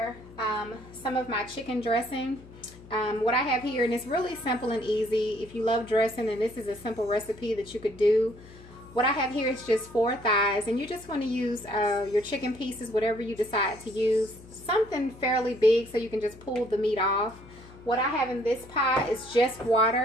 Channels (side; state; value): left; noise; hum, 20 dB below the sound